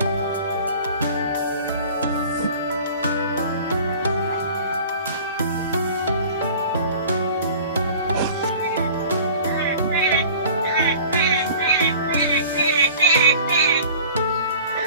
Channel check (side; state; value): both; inverted; correlation -0.44